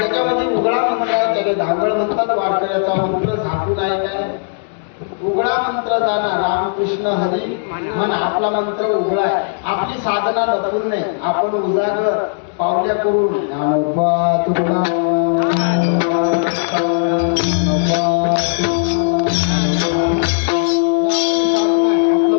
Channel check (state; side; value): silent; right; digital silence